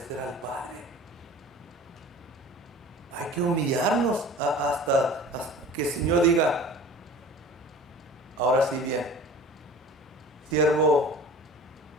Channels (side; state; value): both; normal; correlation 0.41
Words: al Padre. Hay que humillarnos hasta que el Señor diga, Ahora sí bien, siervo